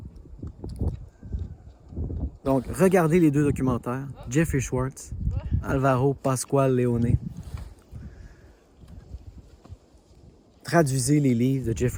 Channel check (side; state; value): both; identical; correlation 1.00